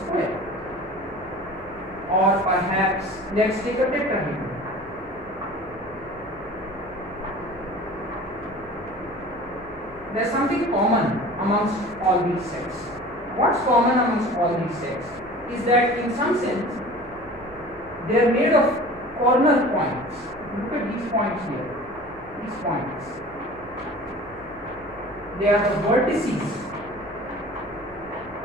Or perhaps let's take a tetrahedron. There's something common amongst all these sets. What's common amongst all these sets is that in some sense they are made of corner points. Look at these points here. These points. They are the vertices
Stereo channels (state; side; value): noise; right; hum, 23 dB below the sound